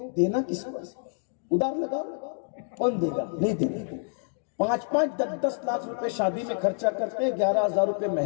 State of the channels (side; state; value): right; silent; digital silence